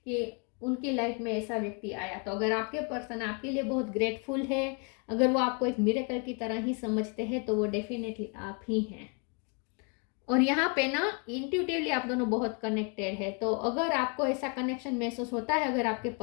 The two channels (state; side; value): quieter; right; 35.5 dB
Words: उनकी लाइफ में ऐसा व्यक्ति आया। तो अगर आपके पर्सन आपके लिए बहुत ग्रेटफुल है, अगर वो आपको एक मिरेकल की तरह ही समझते हैं, तो वो डेफिनेटली आप ही हैं। और यहाँ पे ना इंट्यूटिवली आप दोनों बहुत कनेक्टेड है। तो अगर आपको ऐसा कनेक्शन महसूस होता है अगर आपके